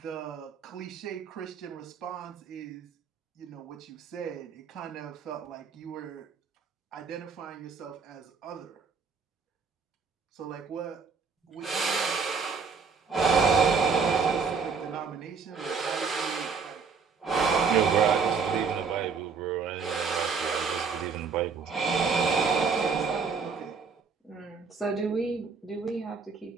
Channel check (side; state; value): left; quieter; 5.4 dB